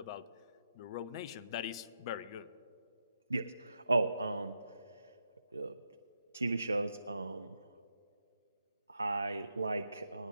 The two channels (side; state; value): both; inverted; correlation -0.84